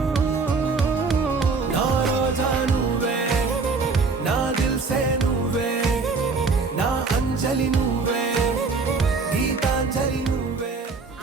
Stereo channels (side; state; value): left; quieter; 4.3 dB